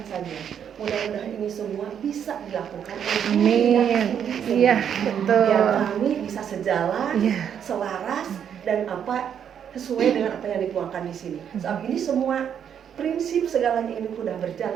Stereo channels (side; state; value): left; quieter; 8.5 dB